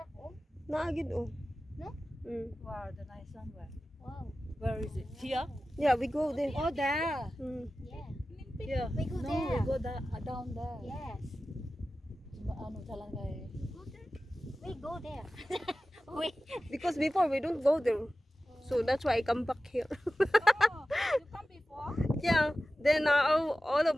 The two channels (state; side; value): normal; both; correlation 0.95